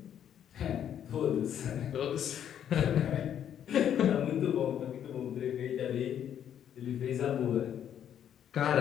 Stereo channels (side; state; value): right; quieter; 9.6 dB